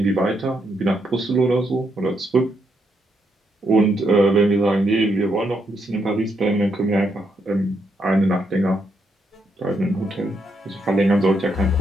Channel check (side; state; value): both; normal; correlation 0.78